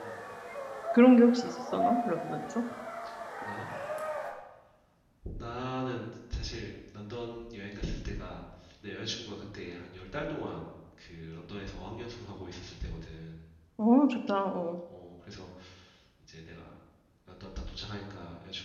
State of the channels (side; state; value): both; identical; correlation 1.00